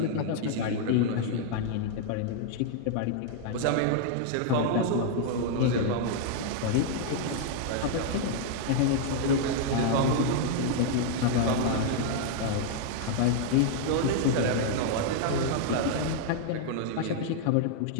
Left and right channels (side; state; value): both; different; correlation -0.01